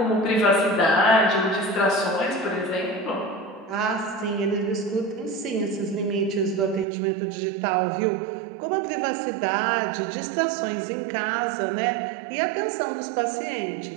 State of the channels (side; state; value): left; drops out; at 6.9 s